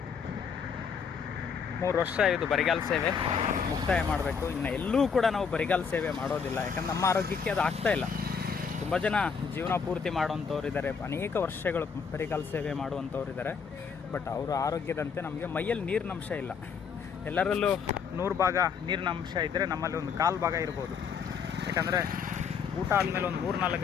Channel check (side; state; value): right; quieter; 6.2 dB